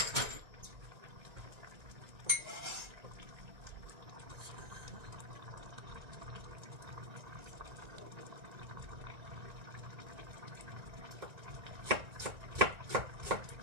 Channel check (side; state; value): left; late; 1.9 ms